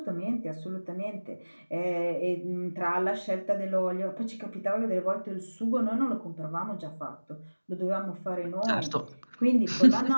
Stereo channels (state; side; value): inverted; both; correlation -1.00